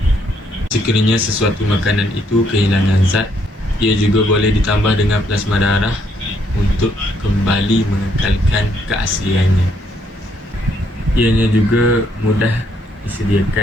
Sekiranya sesuatu makanan itu kehilangan zat, ia juga boleh ditambah dengan plasma darah untuk kembali mengekalkan keasliannya. Ianya juga mudah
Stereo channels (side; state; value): both; normal; correlation 0.71